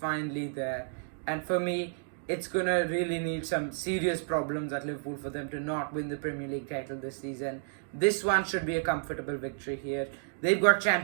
there. And for me, it's going to really need some serious problems at Liverpool for them to not win the Premier League title this season. This one should be a comfortable victory here. They've got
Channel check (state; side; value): silent; left; digital silence